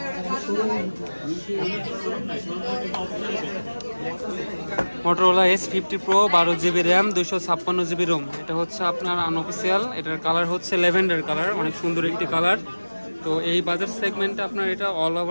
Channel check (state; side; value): inverted; both; correlation -1.00